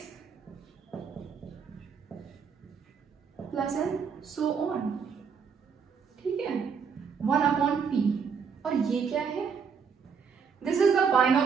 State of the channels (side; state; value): left; quieter; 6.2 dB